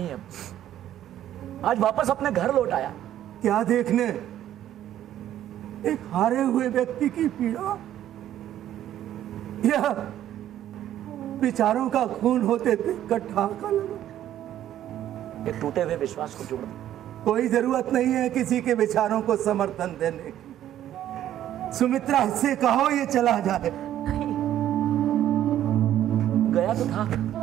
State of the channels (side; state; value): left; quieter; 11.9 dB